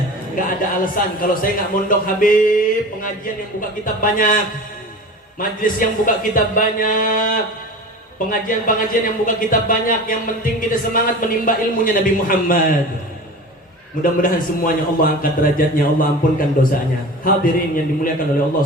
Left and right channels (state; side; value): normal; both; correlation 0.35